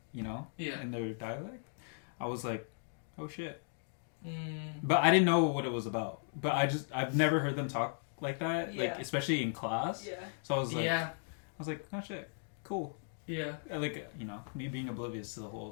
you know, Yeah. in their dialect. I was like, oh shit. Mm. But I didn't know what it was about. But I've never heard them talk like that. Yeah. Like, especially in class. Yeah. So I was like, Yeah. oh shit, cool. Yeah. Like, you know, me being oblivious to the whole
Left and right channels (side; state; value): right; silent; digital silence